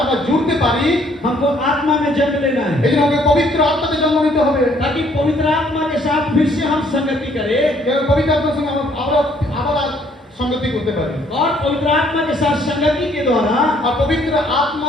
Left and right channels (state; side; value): normal; both; correlation 0.64